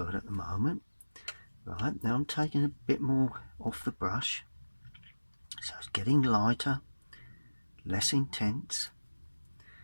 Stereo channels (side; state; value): both; inverted; correlation -1.00